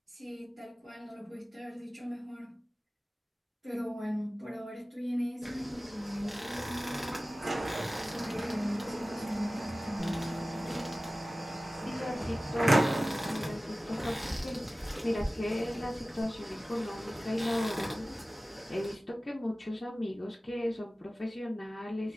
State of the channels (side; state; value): both; normal; correlation 0.96